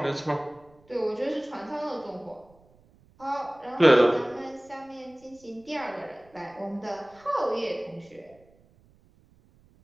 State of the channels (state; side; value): noise; right; rumble, 29 dB below the sound